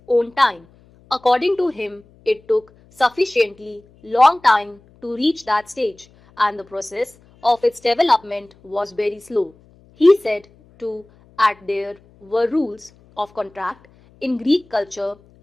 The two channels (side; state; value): left; noise; hum, 29 dB below the sound